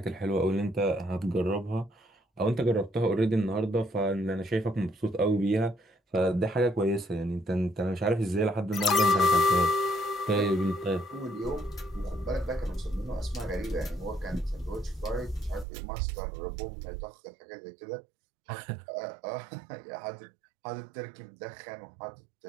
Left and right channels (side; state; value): left; drops out; at 15.7 s